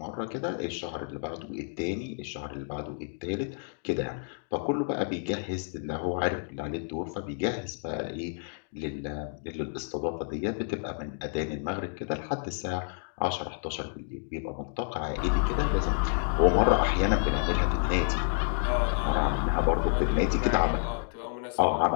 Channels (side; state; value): right; silent; 58 dB below the other